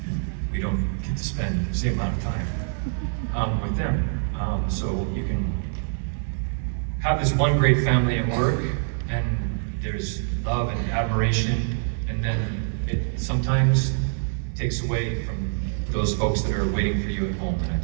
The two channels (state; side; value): silent; left; 62 dB below the other